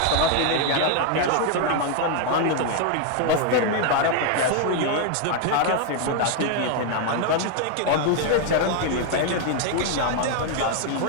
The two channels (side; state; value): both; different; correlation 0.00